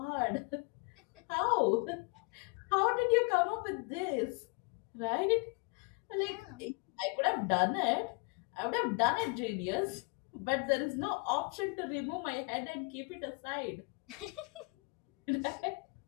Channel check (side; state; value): right; quieter; 32.4 dB